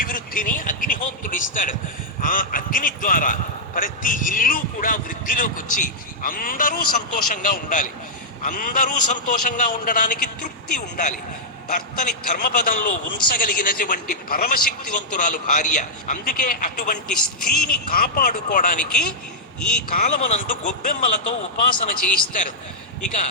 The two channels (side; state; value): both; normal; correlation -0.08